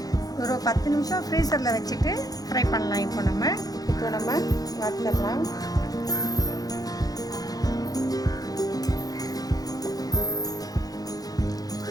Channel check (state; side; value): late; right; 0.18 ms